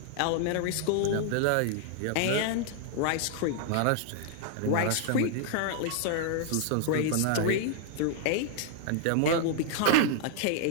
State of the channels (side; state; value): both; different; correlation -0.01